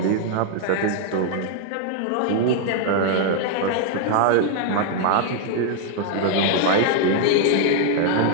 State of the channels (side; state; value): both; different; correlation 0.00